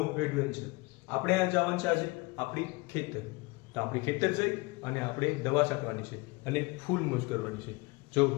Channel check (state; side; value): quieter; right; 25.2 dB